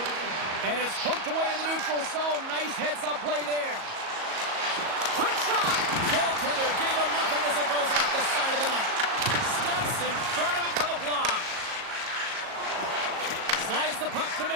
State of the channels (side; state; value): left; late; 37 ms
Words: And it's poked away in the neutral zone. Nice heads-up play there. Quick shot! Goaltender gave him nothing as it goes off the side of the net. Steps in front of it for the block. Slides the puck to